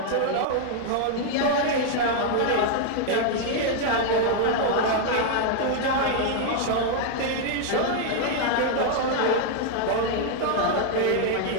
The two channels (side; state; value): both; different; correlation 0.00